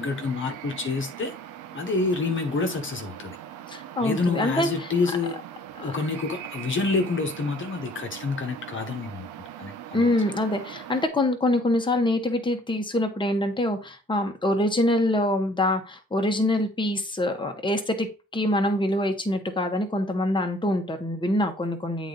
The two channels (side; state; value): both; normal; correlation 0.57